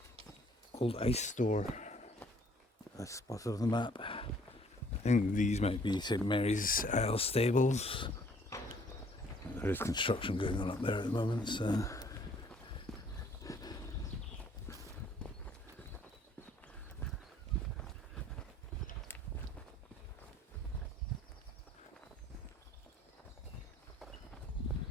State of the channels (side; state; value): both; normal; correlation 0.60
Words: old ice store that's spotted on the map. I think these might be St Mary's Isle stables. There is construction going on up there at the moment, so.